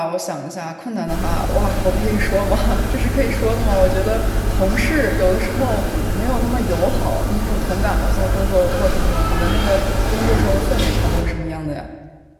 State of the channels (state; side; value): identical; both; correlation 1.00